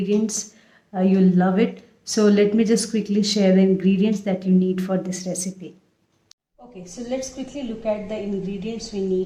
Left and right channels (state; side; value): identical; both; correlation 1.00